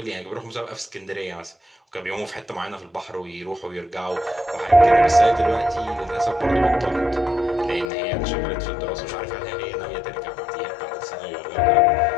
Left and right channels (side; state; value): right; drops out; at 7.9 s